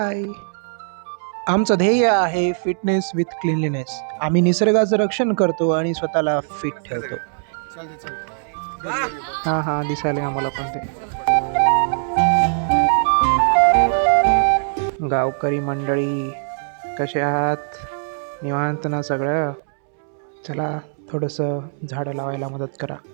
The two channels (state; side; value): silent; left; 65 dB below the other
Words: आमचं ध्येय आहे फिटनेस विथ क्लीनलीनेस। आम्ही निसर्गाचं रक्षण करतो आणि स्वतःला फिट ठेवतो। हा दिसायला आम्हाला पण ते। गावकरी मंडळी कसे आहात? निवांत ना सगळं? चला थोडंसं झाडं लावायला मदत करा।